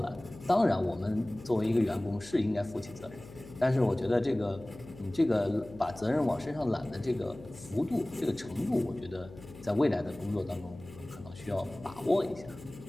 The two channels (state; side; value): noise; left; hum, 17 dB below the sound